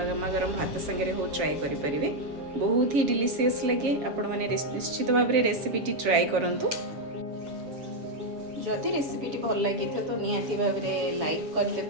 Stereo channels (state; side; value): late; left; 7.4 ms